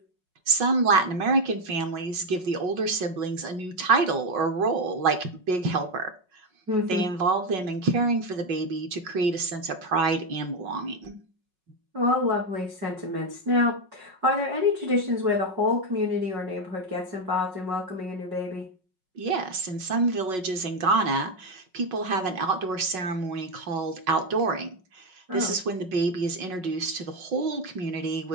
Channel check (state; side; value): late; left; 5.4 ms